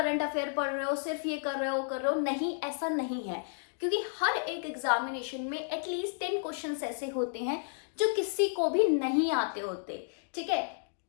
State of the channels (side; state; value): right; silent; digital silence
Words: अफेयर पढ़ रहे हो, सिर्फ ये कर रहे हो, नहीं, ऐसा नहीं है। क्योंकि हर एक एग्जामिनेशन में एटलीस्ट 10 क्वेश्चन ऐसे होते हैं जो किसी को भी नहीं आते होते, ठीक है।